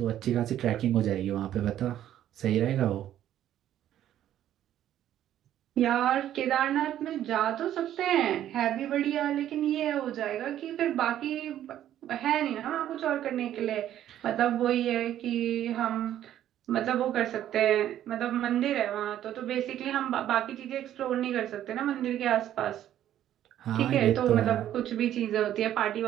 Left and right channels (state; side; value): quieter; left; 11.6 dB